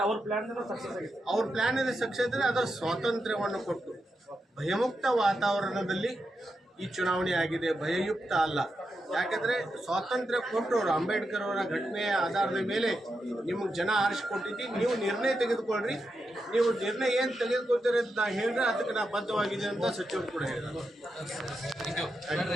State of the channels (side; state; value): both; normal; correlation 0.87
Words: ಅವ್ರ ಪ್ಲಾನ್ ಇದೆ ಸಕ್ಸಸ್ ಇದ್ದರೆ ಅದರ ಸ್ವಾತಂತ್ರ್ಯವನ್ನು ಕೊಟ್ಟು ಭಯಮುಕ್ತ ವಾತಾವರಣದಲ್ಲಿ ಈ ಚುನಾವಣೆ ಆಗಿದೆ, ಭಯಯುಕ್ತ ಅಲ್ಲ. ಯಾಕಂದರೆ ಸ್ವಾತಂತ್ರ್ಯ ಕೊಟ್ಟರು ಅಂಬೇಡ್ಕರ್ ಅವರ ಘಟನೆಯ ಆಧಾರದ ಮೇಲೆ ನಿಮಗೆ ಜನ ಆರಿಸಿಕೊಟ್ಟಿದ್ದು. ನೀವು ನಿರ್ಣಯ ತೆಗೆದುಕೊಳ್ರಿ, ನೀವು ನಿರ್ಣಯ ಏನು ತೆಗೆದುಕೊಳ್ತೀರಿ ಅಂತ ನಾ ಹೇಳಿದ್ರೆ ಅದಕ್ಕೆ ನಾ ಬದ್ಧವಾಗಿದೆ ಅಂತ ಸಚಿವರು ಕೂಡ ಹೇಳಿದರು.